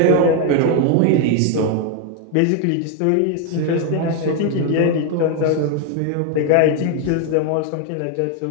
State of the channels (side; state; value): both; different; correlation 0.01